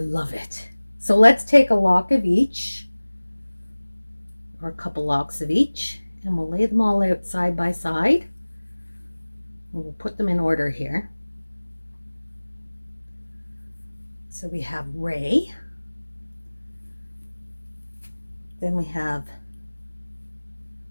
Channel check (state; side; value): inverted; both; correlation -1.00